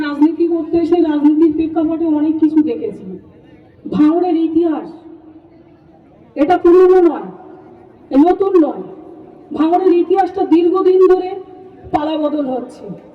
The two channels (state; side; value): identical; both; correlation 1.00